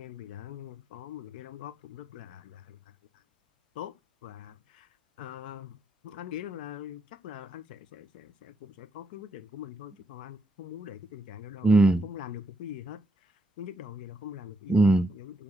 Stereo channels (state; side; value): normal; both; correlation 0.78